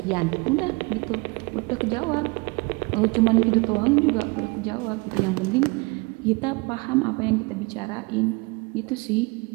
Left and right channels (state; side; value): quieter; left; 27.1 dB